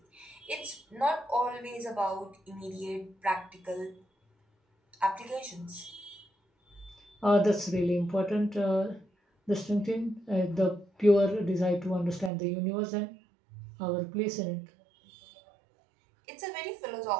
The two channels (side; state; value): left; drops out; at 12.3 s